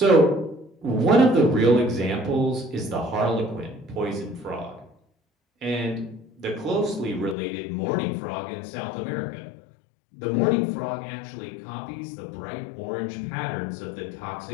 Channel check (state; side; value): drops out; right; at 7.4 s